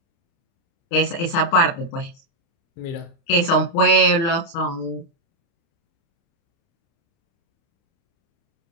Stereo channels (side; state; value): right; late; 30 ms